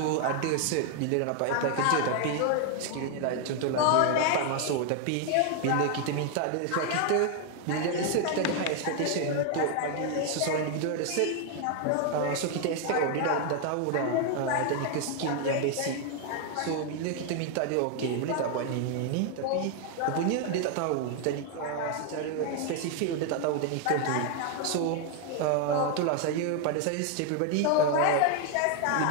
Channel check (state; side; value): different; both; correlation 0.01